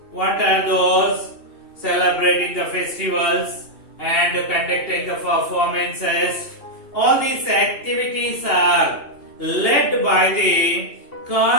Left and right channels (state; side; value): late; right; 2.8 ms